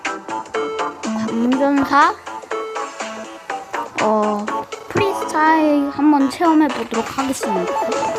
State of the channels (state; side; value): identical; both; correlation 1.00